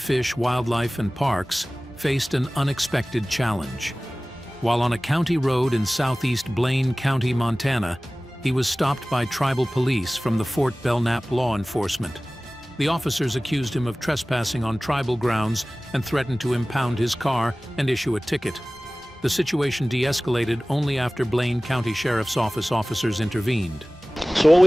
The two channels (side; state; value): both; normal; correlation 0.98